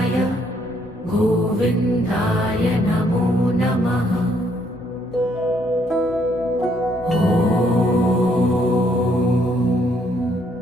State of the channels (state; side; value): normal; both; correlation 0.69